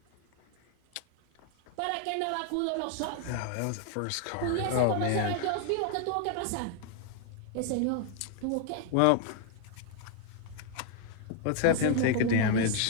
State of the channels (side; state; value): both; different; correlation 0.00